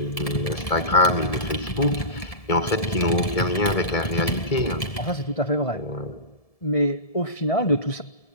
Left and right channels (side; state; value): right; late; 1.7 ms